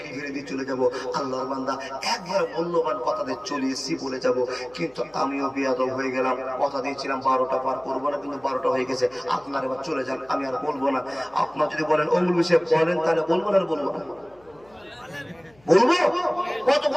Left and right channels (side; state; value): left; noise; hum, 30 dB below the sound